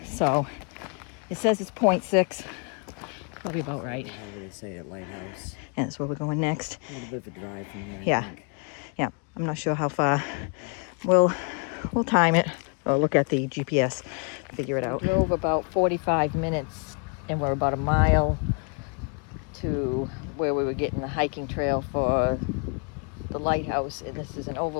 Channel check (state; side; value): quieter; right; 38.5 dB